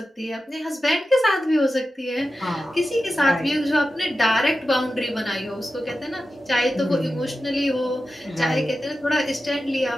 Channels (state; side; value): normal; both; correlation 0.92